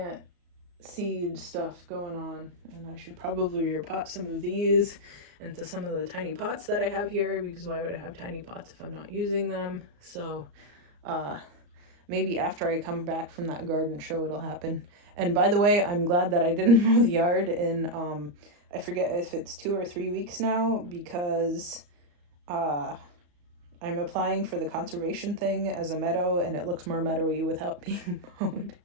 seed stuff going on, and I should probably repot some of these into some of the tiny pots that I have here, because why would I have tiny pots if I'm not using them? So maybe after I come back from that garden show it'll happen. And by the way, I'm glad that I didn't mow the yard in I forget if it's 2 or 3 weeks now, because I'm applying for the conservation thing as a meadow, and it looks more meadowy without being mowed.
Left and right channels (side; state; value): left; late; 34 ms